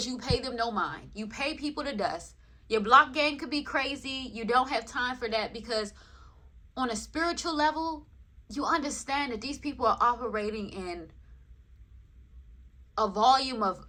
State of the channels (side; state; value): both; identical; correlation 1.00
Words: you pay them no mind. You pay people to dust. Your block game could be crazy. You don't have time for that, because on a spiritual level, you understand that these people are operating in a volume